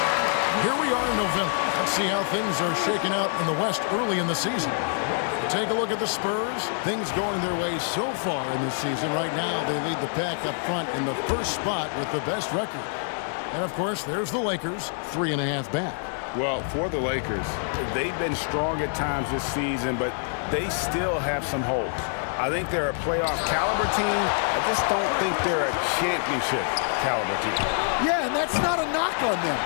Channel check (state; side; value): silent; right; 61 dB below the other